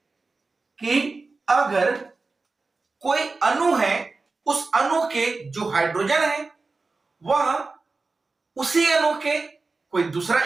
कि अगर कोई अणु है, उस अणु के जो हाइड्रोजन है वह उसी अणु के कोई दूसरा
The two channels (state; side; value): quieter; left; 3.8 dB